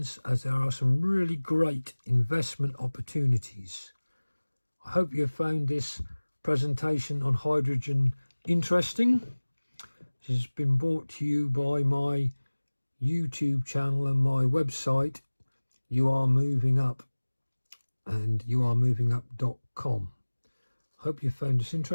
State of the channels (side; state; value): both; inverted; correlation -1.00